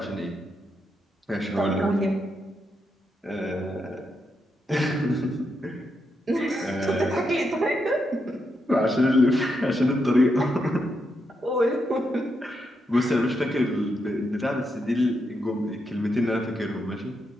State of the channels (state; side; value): normal; both; correlation 0.82